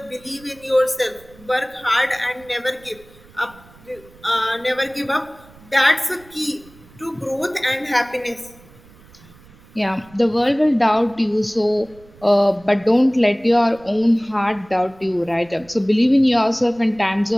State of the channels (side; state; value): right; noise; rumble, 25 dB below the sound